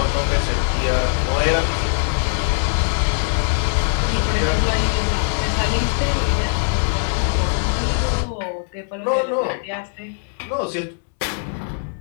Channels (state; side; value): silent; right; digital silence